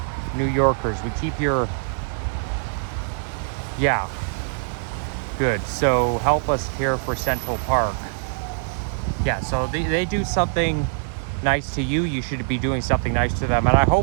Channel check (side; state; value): left; silent; 63 dB below the other